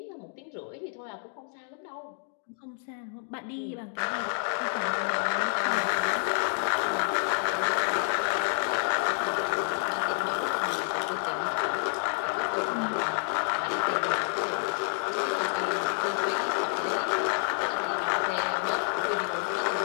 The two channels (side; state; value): right; silent; digital silence